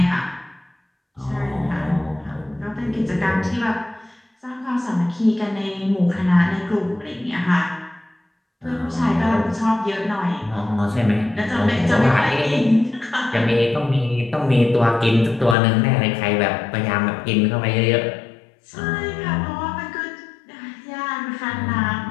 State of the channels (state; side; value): drops out; right; at 15.6 s